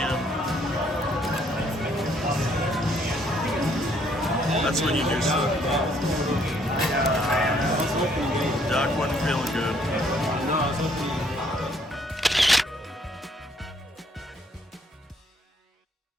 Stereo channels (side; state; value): both; normal; correlation 0.66